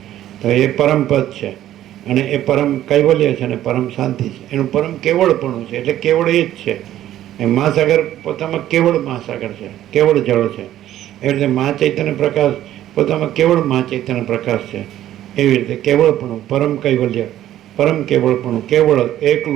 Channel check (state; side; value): quieter; left; 12.7 dB